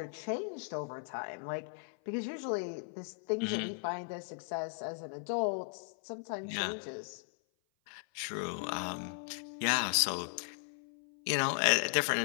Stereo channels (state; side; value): silent; right; 53 dB below the other